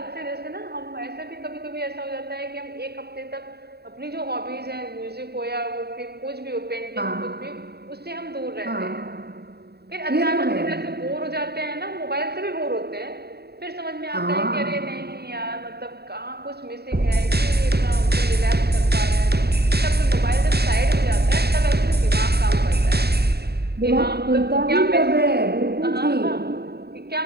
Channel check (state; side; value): late; left; 0.47 ms